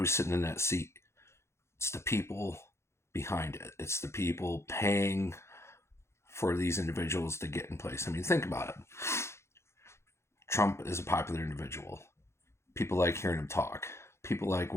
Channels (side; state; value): right; late; 0.13 ms